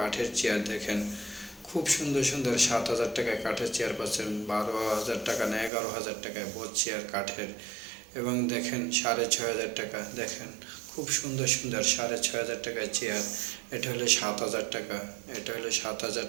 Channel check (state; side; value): drops out; left; at 5.7 s